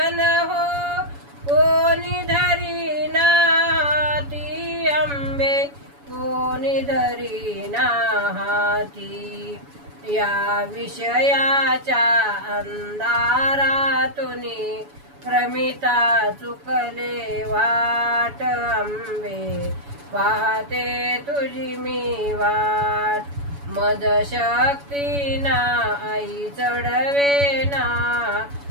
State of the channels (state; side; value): late; left; 7.1 ms